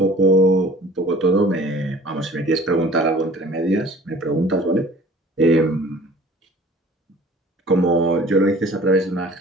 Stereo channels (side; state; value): both; normal; correlation 0.48